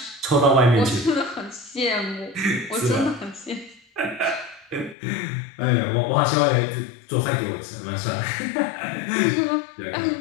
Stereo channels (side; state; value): right; drops out; at 5.0 s